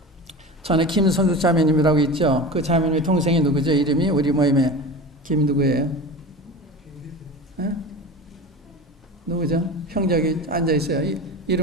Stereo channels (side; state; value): both; normal; correlation 0.31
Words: 전에 김성숙 자매님이라고 있죠. 그 자매님의 동생이 누구죠? 이름이 우리 모임에 김 누구예요? 네? 누구죠? 형제 여기 앉아 있어요.